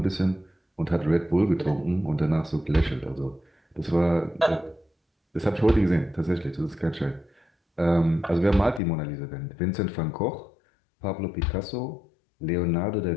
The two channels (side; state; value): right; drops out; at 8.8 s